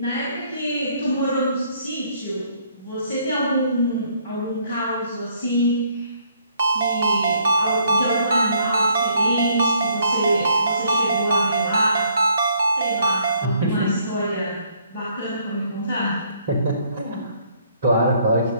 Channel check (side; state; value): both; inverted; correlation -0.66